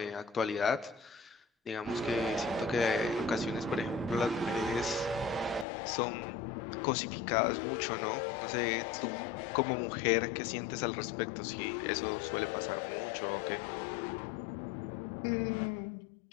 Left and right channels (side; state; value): right; drops out; at 5.7 s